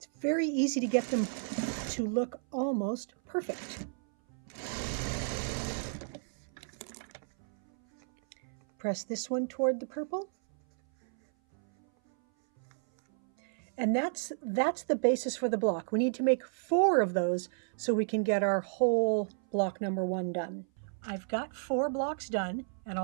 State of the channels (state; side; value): silent; left; 56 dB below the other